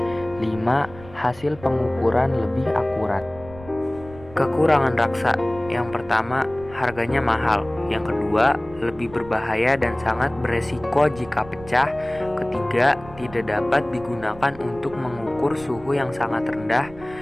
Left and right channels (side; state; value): right; noise; rumble, 18 dB below the sound